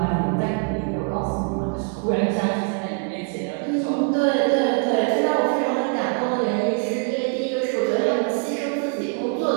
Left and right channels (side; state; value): left; quieter; 37.2 dB